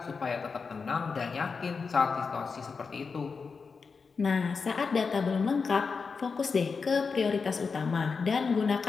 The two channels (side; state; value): right; quieter; 5.0 dB